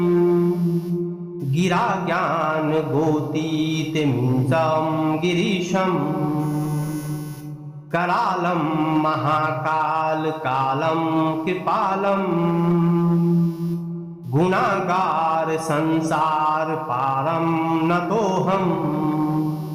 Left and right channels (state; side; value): identical; both; correlation 1.00